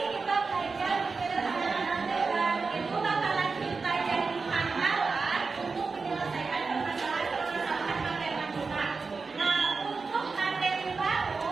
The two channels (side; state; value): left; quieter; 4.5 dB